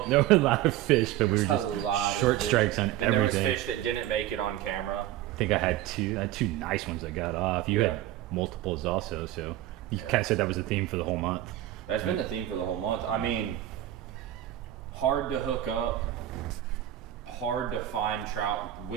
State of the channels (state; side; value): quieter; left; 13.4 dB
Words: There were a lot of fish, but we were A lot just of short fish. strikes on And everything. there was fish that didn't make it on camera. I think I had two nice ones that got off. You had multiples also, so you kind of said that was the theme for the whole month. That's been the theme for the whole month. I mean, hard to hook up, hard to find trout